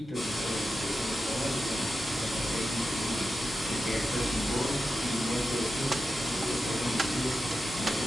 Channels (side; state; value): both; normal; correlation 0.90